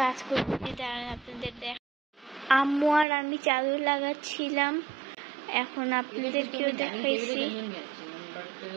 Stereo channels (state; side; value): drops out; left; at 3.1 s